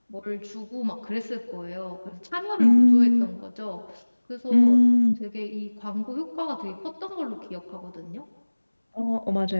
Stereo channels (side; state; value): both; inverted; correlation -1.00